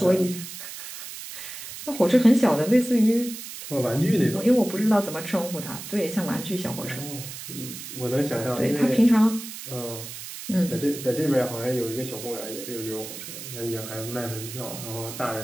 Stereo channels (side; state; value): right; noise; hiss, 11 dB below the sound